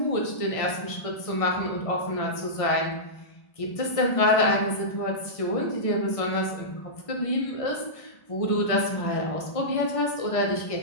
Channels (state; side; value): late; right; 1.5 ms